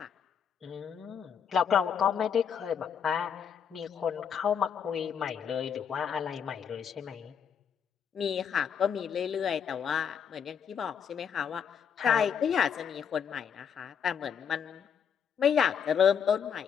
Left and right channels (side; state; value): right; quieter; 7.5 dB